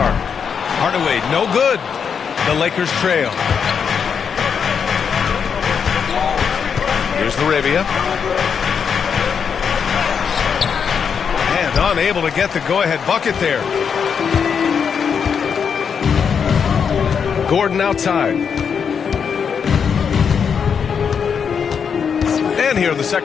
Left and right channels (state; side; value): quieter; right; 6.8 dB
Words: Hardaway, no good. The Lakers trail. Here's LaRavia. And unable to get the go-ahead bucket there. Gordon outside. And here in the